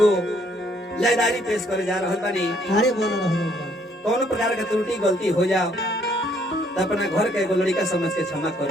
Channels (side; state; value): both; normal; correlation 0.66